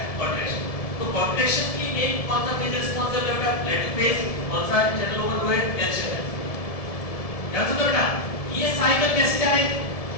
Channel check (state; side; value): late; right; 1.7 ms